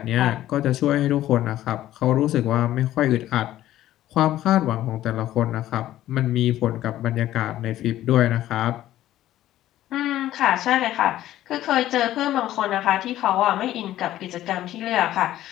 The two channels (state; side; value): quieter; right; 13.6 dB